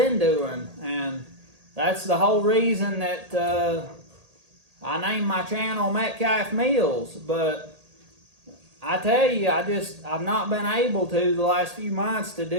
doing. And that's the whole reason that I named my channel Metcalf Mills. But I tell you, I've not been able to the last few months to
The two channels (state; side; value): late; left; 1.8 ms